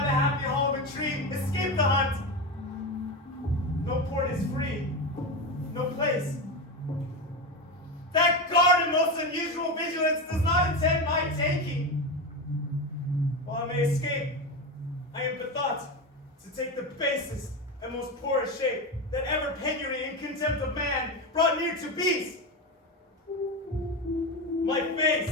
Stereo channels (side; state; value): both; normal; correlation 0.18